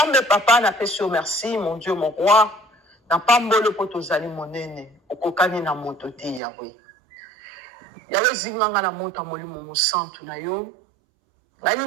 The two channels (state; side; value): drops out; left; at 6.4 s